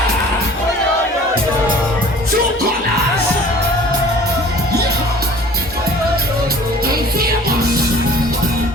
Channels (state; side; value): normal; both; correlation 0.47